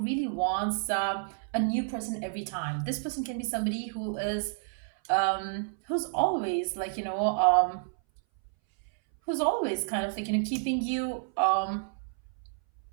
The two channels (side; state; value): left; silent; 58 dB below the other